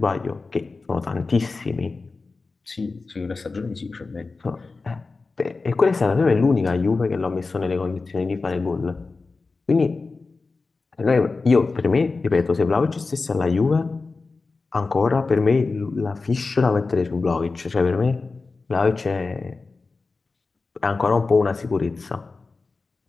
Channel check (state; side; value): quieter; right; 4.0 dB